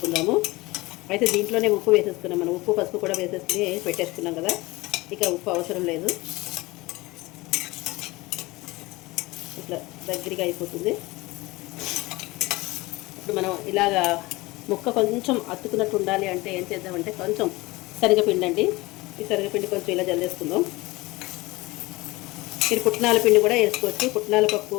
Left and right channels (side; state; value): right; quieter; 21.5 dB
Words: అయితే దీంట్లోనే ఉప్పు వేసేసుకున్నాం. మనం ఉప్పు పసుపు కూడా వేసేసుకుని పెట్టేసుకున్నాం కదా, ఇక ఉప్పు అవసరం లేదు. ఇట్లా దగ్గరగా అయిపోతుంది. ఇప్పుడు మనం ఇలాగా ముక్క కొంచెం అతుకున్నట్టు ఉండాలి అంటే ఏం చేద్దామంటే కొంచెం శనగపిండి అండి. ఈ శనగపిండి కొంచెం ఇలా జల్లేసుకుందాం. మీరు పుట్నాల పిండి కూడా వేసుకోవచ్చు. పుట్నాల పప్పు